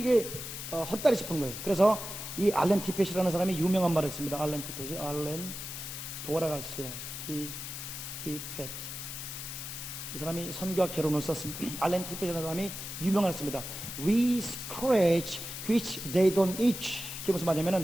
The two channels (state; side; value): noise; left; hiss, 8 dB below the sound